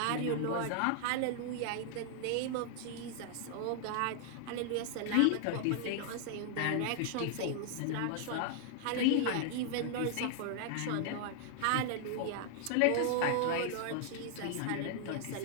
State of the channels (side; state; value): both; different; correlation 0.00